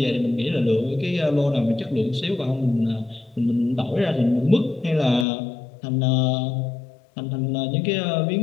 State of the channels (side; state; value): right; drops out; at 5.2 s